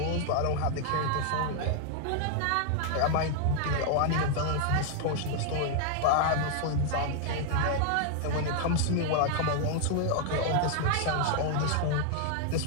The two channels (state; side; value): different; both; correlation 0.00